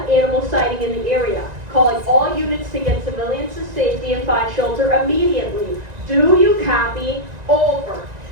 animal sighting in the area, calling all units to get civilians to safety and find shelter immediately. Do you copy? Over.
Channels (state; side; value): late; left; 1.9 ms